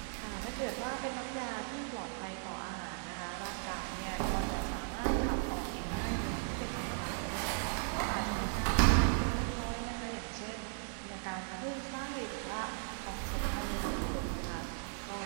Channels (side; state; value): left; silent; 53 dB below the other